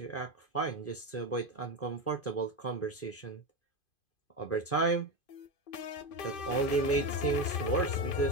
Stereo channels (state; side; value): late; right; 2.5 ms